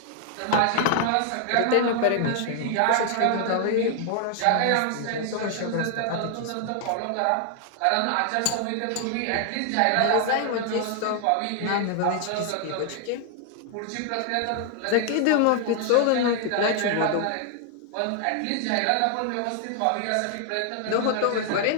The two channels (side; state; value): both; different; correlation 0.00